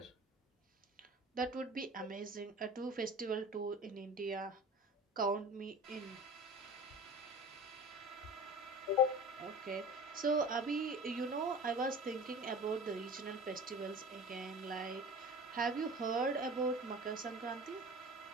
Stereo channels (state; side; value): normal; both; correlation 0.38